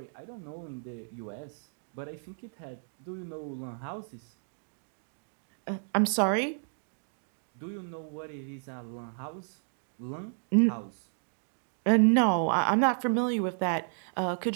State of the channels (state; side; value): silent; left; digital silence